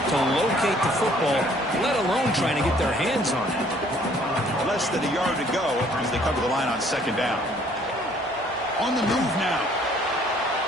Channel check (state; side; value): normal; both; correlation 0.60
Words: locate the football, let alone trying to get their hands on it. Less than a yard to go as they come to the line on 2nd down. On the move now.